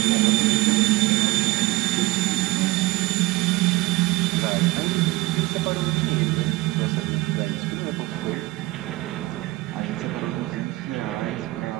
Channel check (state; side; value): quieter; left; 20.8 dB